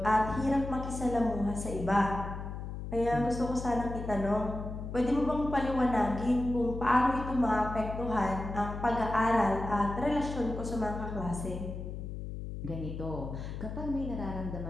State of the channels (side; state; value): left; noise; hum, 7 dB below the sound